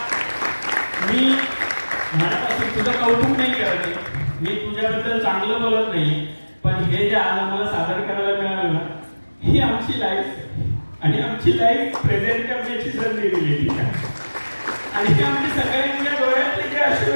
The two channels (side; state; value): both; inverted; correlation -1.00